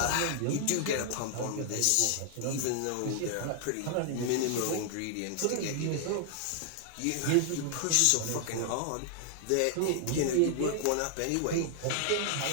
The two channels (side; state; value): both; different; correlation 0.00